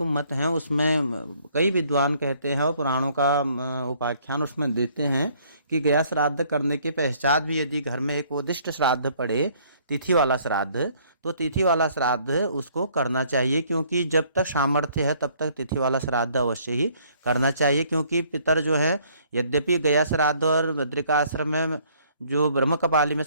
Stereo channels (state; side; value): inverted; both; correlation -0.62